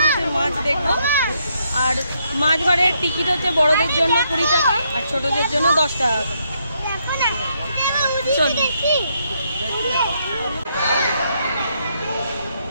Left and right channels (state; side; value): inverted; both; correlation -0.75